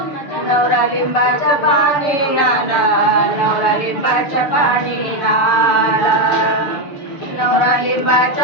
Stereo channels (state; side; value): late; right; 6.7 ms